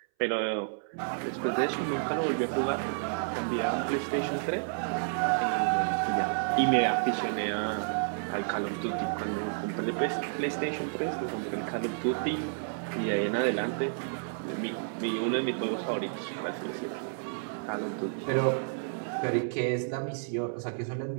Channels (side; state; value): left; silent; 57 dB below the other